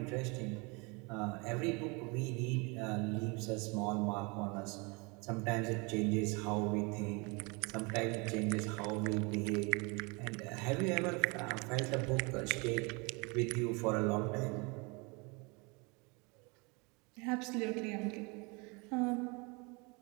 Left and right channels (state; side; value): quieter; left; 29.5 dB